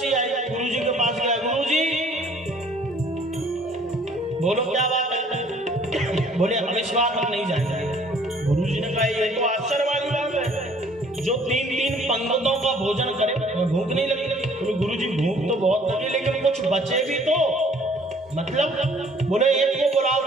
आई, गुरु जी के पास गया। गुरु जी बोलो क्या बात है? बोले अब इस बार हम नहीं जाएंगे। गुरु जी ने कहा ये तो आश्चर्य वाली बात है, जो तीन पंक्तों का भोजन करे भूख नहीं लगी। बोले गुरु जी भूख तो बहुत लगी, लेकिन कुछ बचे भी तो, मतलब बोले एक को बुलाओ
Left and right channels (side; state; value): both; normal; correlation 0.57